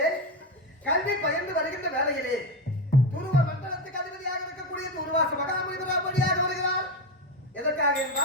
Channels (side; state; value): both; normal; correlation 0.14